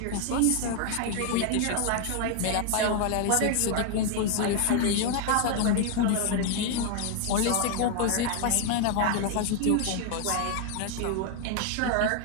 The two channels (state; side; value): different; both; correlation 0.00